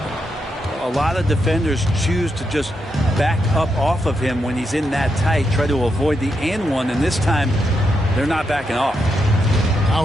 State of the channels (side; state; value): both; normal; correlation 0.83